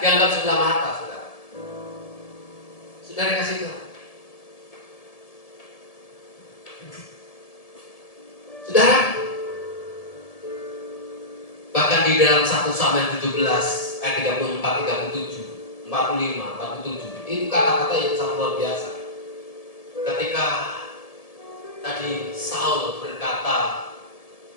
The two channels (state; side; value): late; right; 1.7 ms